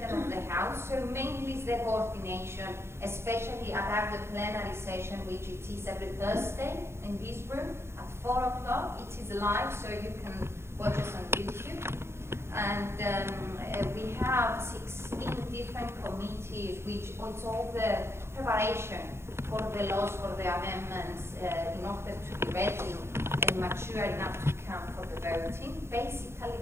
of the House, so mainly is the coordination, especially about the plenary session, which it is every Thursday in this room at 4 o'clock. It is live, so you can watch us on YouTube. And we have 16 different committees, which it's all the preparation for the laws, for the amendments, in order to be ready and mature enough to come for the voting. Basically,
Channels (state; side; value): late; left; 0.12 ms